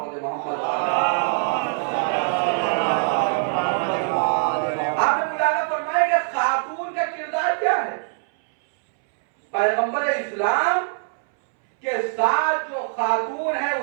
محمد۔ آپ نے ملاحظہ فرمایا کہ خاتون کا کردار کیا ہے؟ پیغمبر اسلام کے ساتھ جو خاتون ہے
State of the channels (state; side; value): silent; left; 64 dB below the other